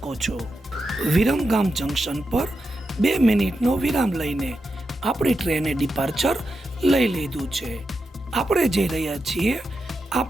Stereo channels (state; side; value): normal; both; correlation 0.88